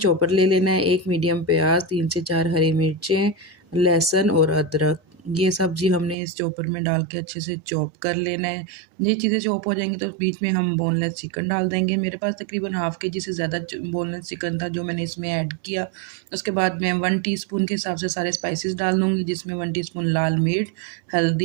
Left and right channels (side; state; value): left; drops out; at 6.2 s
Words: ले लेना है, 1 मीडियम प्याज़, 3 से 4 हरी मिर्चें, लहसुन और अदरक, ये सब्ज़ी हमने इस चॉपर में डाल के अच्छे से चॉप कर लेना है। ये चीज़ें चॉप हो जाएँगी तो बीच में हम बोनलेस चिकन डाल देंगे। मेरे पास तकरीबन हाफ़ केजी से ज़्यादा च बोनलेस चिकन था जो मैंने इसमें ऐड किया। उसके बाद मैं 1 टीस्पून के हिसाब से सारे स्पाइसेस डाल दूँगी, जिसमें 1 टीस्पून लाल मिर्च,